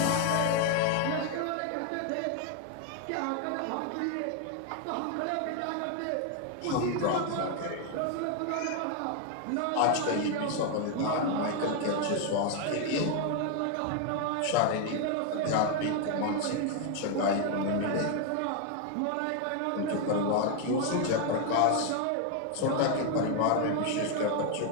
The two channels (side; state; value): both; different; correlation 0.01